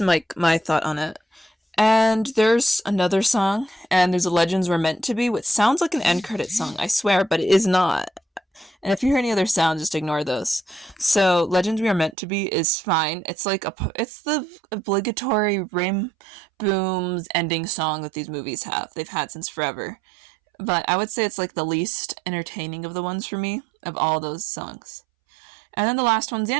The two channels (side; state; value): left; drops out; at 12.2 s